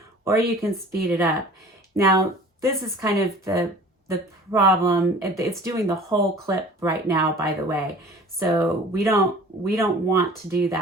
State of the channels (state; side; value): normal; both; correlation 0.45